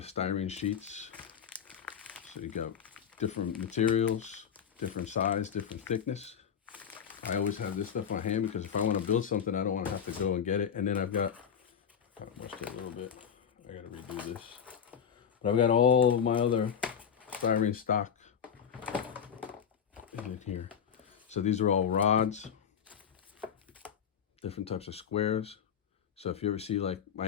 styrene sheets. So you got different materials, different size, different thickness. I always have this stuff on hand because if I want to build something, I don't want to have to go and get it. And then I've got, kind of mushed it a little bit. I got to redo this. But I've got all of my other styrene stock in here. So these are all rods, different types of squares. So if you ever see like my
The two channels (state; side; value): quieter; right; 7.8 dB